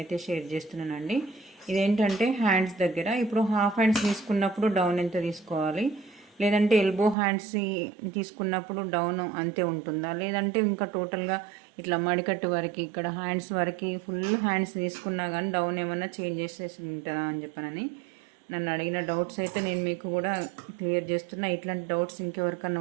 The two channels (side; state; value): left; drops out; at 7.2 s